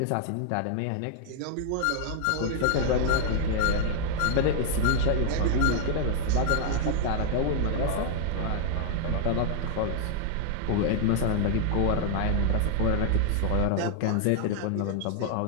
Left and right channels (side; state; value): both; different; correlation 0.00